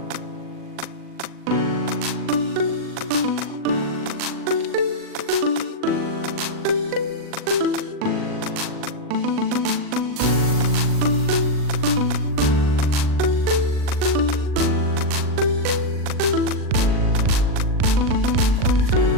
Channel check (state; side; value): late; left; 40 ms